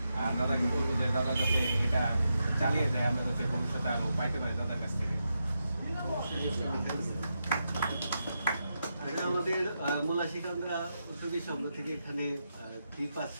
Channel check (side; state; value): both; inverted; correlation -0.85